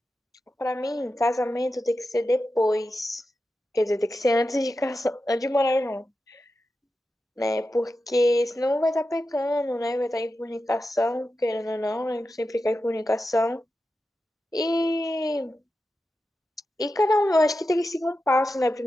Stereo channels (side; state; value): both; normal; correlation 0.91